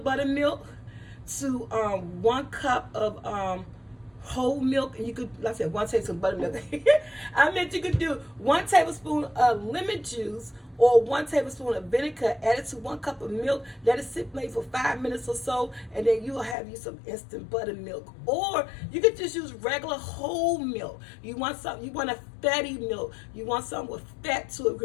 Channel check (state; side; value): drops out; right; at 16.6 s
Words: buttermilk to 1 cup of whole milk, and you could, like I said, 1 tablespoon of buttermilk. I meant you could do 1 tablespoon of lemon juice or 1 tablespoon of vinegar added to 1 cup of milk. Let it sit maybe for 5 minutes or so, and then you'll have you some instant buttermilk. Or you could just use regular whole milk. You want a fatty milk. You want something with fat to it.